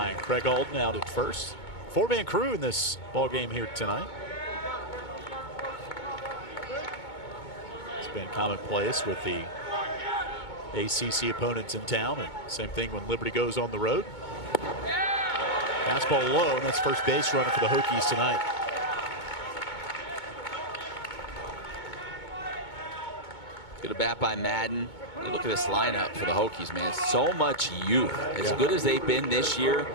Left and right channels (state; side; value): late; right; 2.2 ms